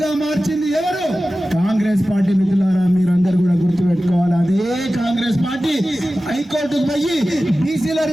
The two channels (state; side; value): normal; both; correlation 0.95